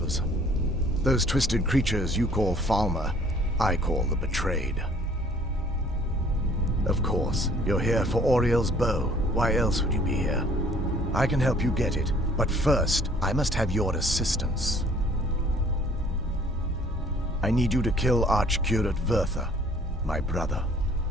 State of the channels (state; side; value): normal; both; correlation 0.56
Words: Those twisted creatures you call Falmer, I call the Betrayed. Of course, you're here for Auriel's bow. Why else would you be here? I can help you get it, but first, I must have your assistance. I need you to kill Archcurate Vertha, my brother.